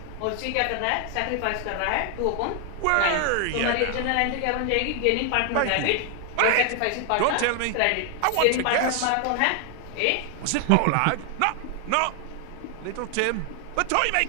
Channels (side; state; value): both; different; correlation 0.00